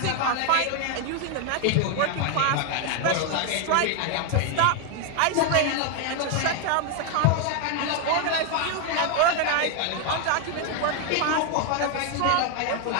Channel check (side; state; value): both; different; correlation 0.01